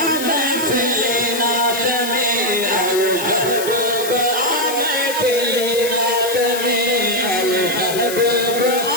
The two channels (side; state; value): left; noise; hiss, 7 dB below the sound